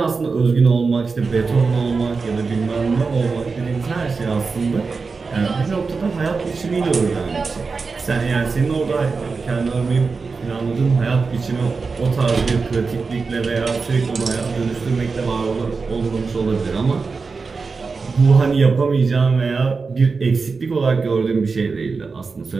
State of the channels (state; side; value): quieter; left; 4.6 dB